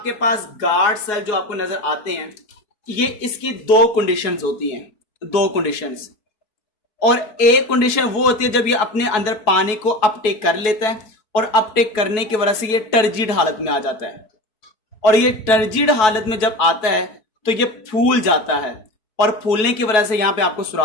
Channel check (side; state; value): right; late; 4.7 ms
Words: पास गार्ड सेल जो आपको नजर आते हैं, ये इसकी दो कंडीशंस होती हैं, दो कंडीशंस। और एक कंडीशन वो होती है जब ये अपने अंदर पानी को अपटेक कर लेता है, और अपटेक करने की वजह से ये टर्जिड हालत में आ जाता है। और ये टर्जिड हालत में जब आता है तो ये फूल जाता है, और फूलने की वजह से यहां पे आपको